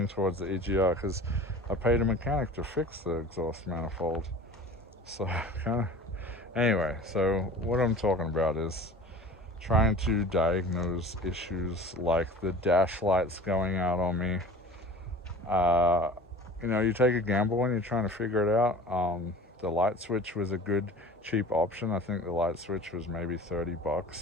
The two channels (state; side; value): normal; both; correlation 0.41